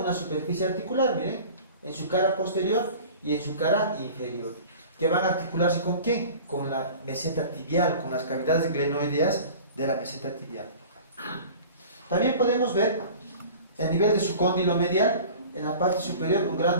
superficie articular, miren, en su cara posterior y en su cara inferior, que van a articularse ¿con qué? Con la meseta tibial, con las cavidades glenoideas de la meseta tibial. También podemos ver, a nivel de su cóndilo medial, en la parte superior un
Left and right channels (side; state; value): both; inverted; correlation -0.41